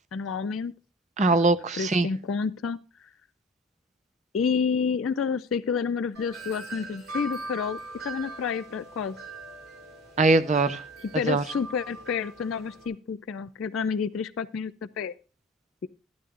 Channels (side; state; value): both; normal; correlation 0.39